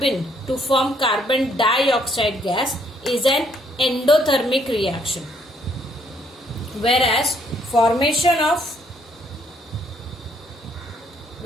to form carbon dioxide gas is an endothermic reaction, whereas formation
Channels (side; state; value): both; normal; correlation 0.68